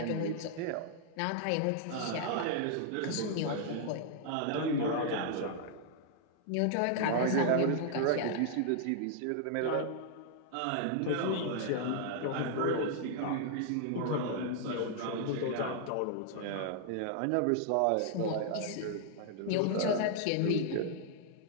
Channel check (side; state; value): both; different; correlation -0.01